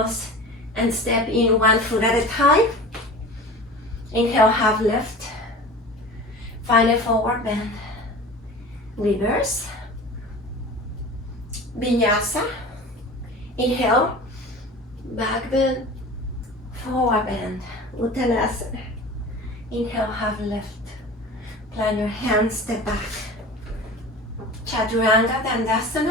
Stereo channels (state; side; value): normal; both; correlation 0.36